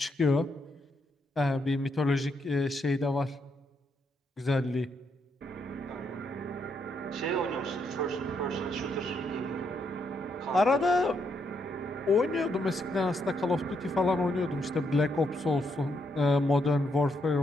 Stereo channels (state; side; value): normal; both; correlation 0.77